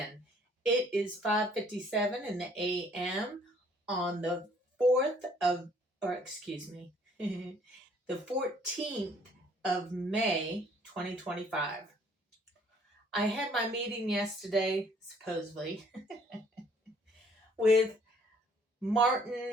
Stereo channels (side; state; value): both; normal; correlation 0.61